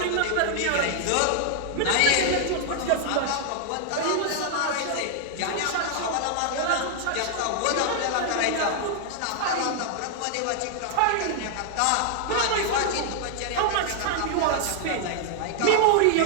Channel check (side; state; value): both; different; correlation 0.00